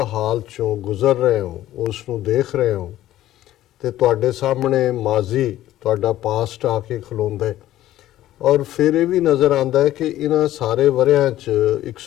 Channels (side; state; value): right; quieter; 13.9 dB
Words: ਹਾਲ ਚੋਂ ਗੁਜ਼ਰ ਰਹੇ ਹੋ, ਉਸ ਨੂੰ ਦੇਖ ਰਹੇ ਹੋ ਤੇ ਤੁਹਾਡੇ ਸਾਹਮਣੇ ਮਾਜ਼ੀ, ਤੁਹਾਡਾ ਪਾਸਟ ਆ ਕੇ ਖਲੋਂਦਾ ਹੈ। ਔਰ ਫਿਰ ਇਹ ਵੀ ਨਜ਼ਰ ਆਉਂਦਾ ਹੈ ਕਿ ਇਹਨਾਂ ਸਾਰੇ ਵਰਿਆਂ 'ਚ